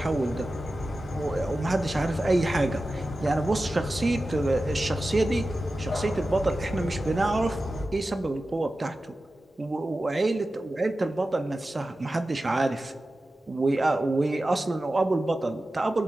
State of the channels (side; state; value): both; normal; correlation 0.94